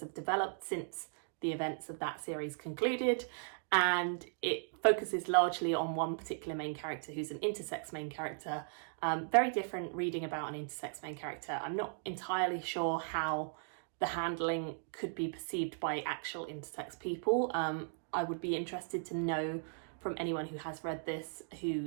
have developed since the events of that series concluded. And it focuses largely on one particular main character who's an intersex main character. Very different reading about an intersex main character. I'm not entirely sure how the handling could be perceived by actual intersex people. I would be interested to know from anyone who has read this,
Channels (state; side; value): silent; left; digital silence